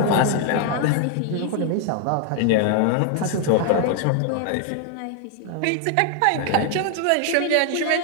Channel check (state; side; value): different; both; correlation 0.00